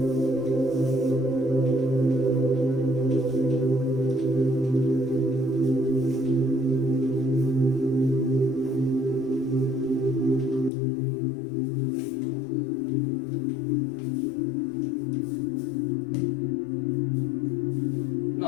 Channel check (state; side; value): drops out; right; at 10.7 s